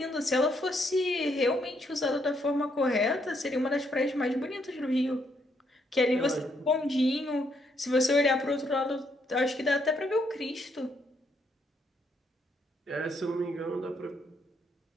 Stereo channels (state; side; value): normal; both; correlation 0.74